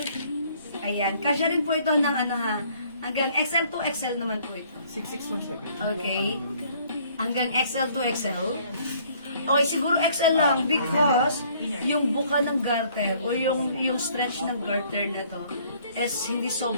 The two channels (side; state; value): both; inverted; correlation -0.60